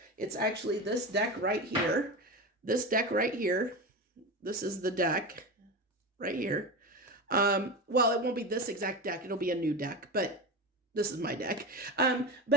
It's actually this deck right here. This deck right here. This is the deck right here. Well, it won't be this exact deck. It'll be a new deck, but this is my deck.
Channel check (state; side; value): normal; both; correlation 0.23